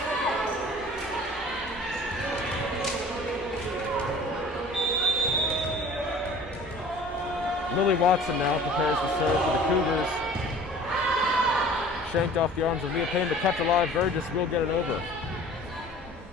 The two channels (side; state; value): both; normal; correlation 0.45